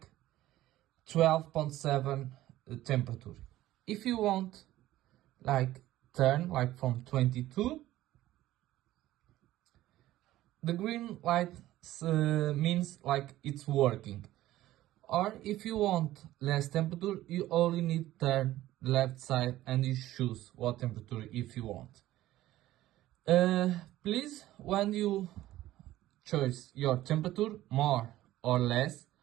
12.7 temperature. If you want like turn like from 22, the green light means like it's working. Or if you want less temperature, you only need turn left side and you choose what temperature if you want. Please, when you choose your temperature more or less,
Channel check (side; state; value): left; quieter; 15.1 dB